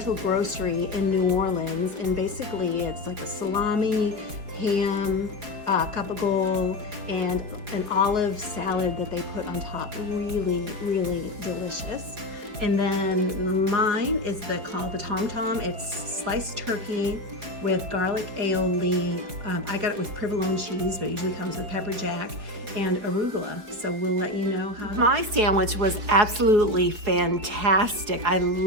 Grocery in New Orleans. And basically it's like a salami, ham, gabagool, and an olive salad that they put on top. Really, really delicious. And then mine is called the Tom Tom. It's sliced turkey with garlic aioli. I got it with provolone cheese, but it usually comes with pepper jack and arugula. So we'll let you know how. My sandwich was absolutely fantastic. I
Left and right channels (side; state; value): left; late; 4.7 ms